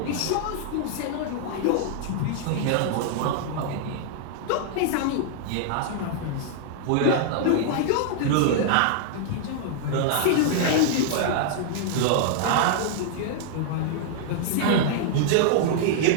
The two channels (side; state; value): both; different; correlation -0.01